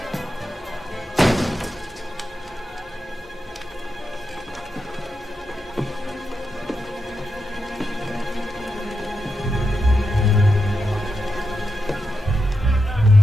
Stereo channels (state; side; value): normal; both; correlation 0.87